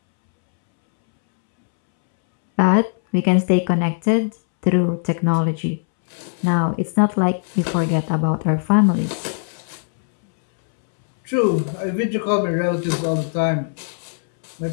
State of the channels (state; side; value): silent; right; 66 dB below the other